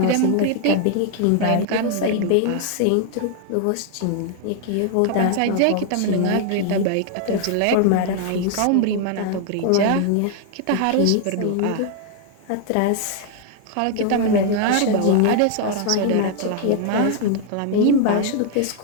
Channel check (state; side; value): different; both; correlation 0.00